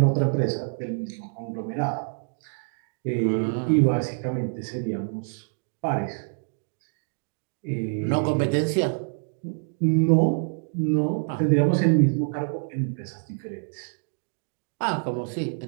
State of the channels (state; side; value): silent; left; 61 dB below the other